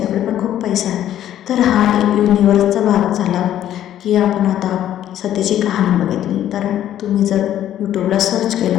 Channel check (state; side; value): quieter; right; 11.6 dB